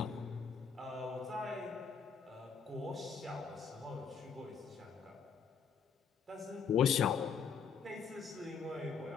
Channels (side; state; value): right; quieter; 6.3 dB